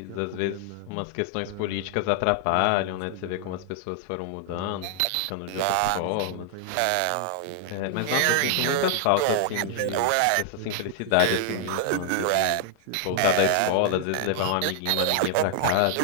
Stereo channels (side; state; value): both; different; correlation 0.00